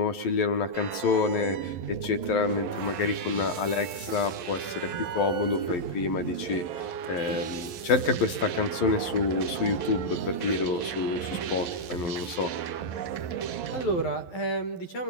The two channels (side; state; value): right; late; 11 ms